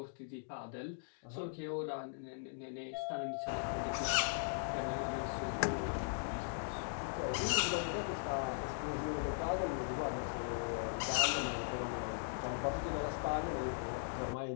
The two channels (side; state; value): right; silent; digital silence